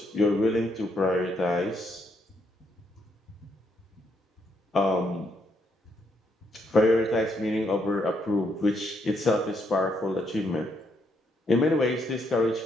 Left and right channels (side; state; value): both; normal; correlation 0.75